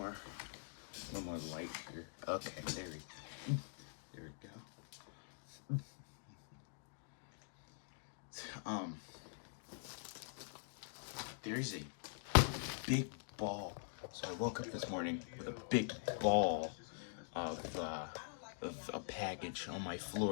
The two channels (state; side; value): silent; right; digital silence